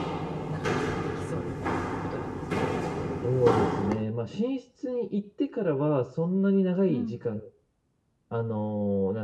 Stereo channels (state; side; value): identical; both; correlation 1.00